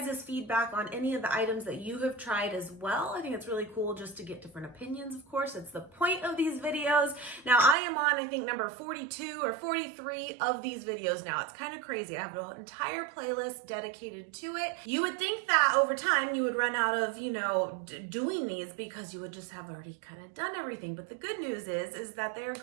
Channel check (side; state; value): left; drops out; at 7.8 s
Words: feedback on any of the items that you have tried as well. I think it's really cool just to get different opinions. Of course, it's the point of these videos. Now I am on, I think, number 42 or 43 of these videos now. It's kind of crazy. I have an entire playlist dedicated to it. You would think that over time you would run out of, doing these, because you would just have already kind of done everything. But the good news is that they're